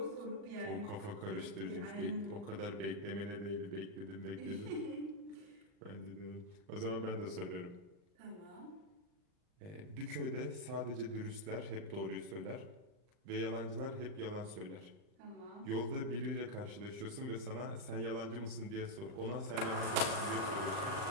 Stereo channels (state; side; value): late; left; 39 ms